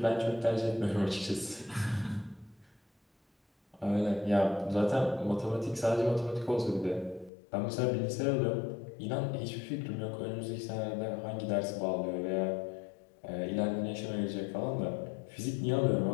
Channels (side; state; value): right; drops out; at 7.3 s